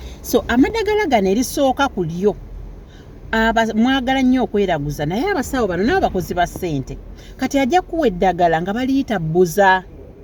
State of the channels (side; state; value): both; identical; correlation 1.00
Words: So amadagala gano erisooka ku lyo mwagala nnyo okweraguza naye abasawo bano nabo bakozi ba ssente kati ajja kuwa eddagala nga baliyita buza.